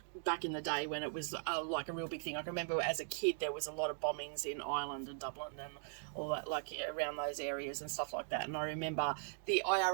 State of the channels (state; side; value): silent; left; digital silence